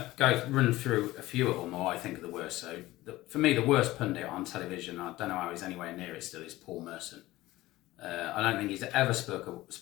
run through a few of them, or I think are the worst. So, for me, the worst pundit on television, I don't know how he's anywhere near it still, is Paul Merson. I don't think he's ever spoke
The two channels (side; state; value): right; quieter; 17.5 dB